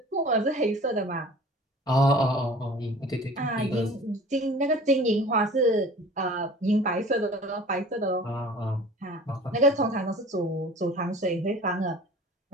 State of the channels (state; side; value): normal; both; correlation 0.44